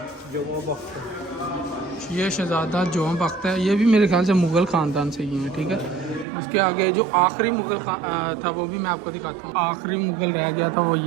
ये शहज़ादा जोम बख्त है। ये भी मेरे ख्याल से मुग़ल ख़ानदान से ही हैं, ठीक है। उसके आगे जो आखिरी मुग़ल था वो भी मैं आपको दिखाता हूँ। आखिरी मुग़ल रह गया था वो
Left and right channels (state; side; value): drops out; left; at 6.2 s